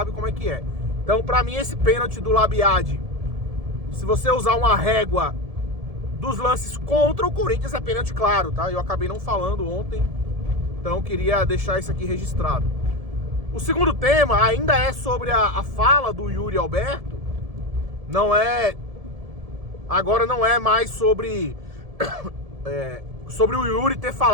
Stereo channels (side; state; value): left; late; 1.7 ms